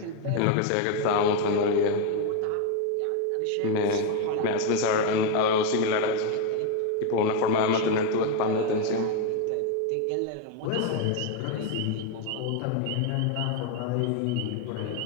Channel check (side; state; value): both; different; correlation 0.01